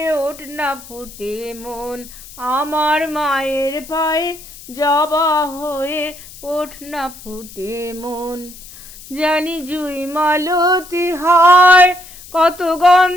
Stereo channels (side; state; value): left; noise; hiss, 18 dB below the sound